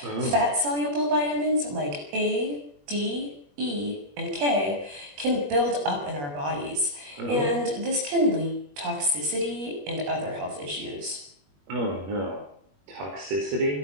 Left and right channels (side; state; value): left; late; 21 ms